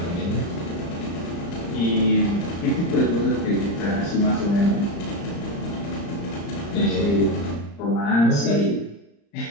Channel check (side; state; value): right; late; 35 ms